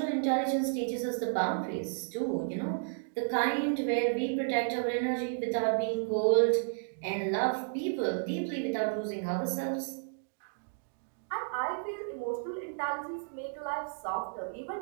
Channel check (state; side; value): silent; left; digital silence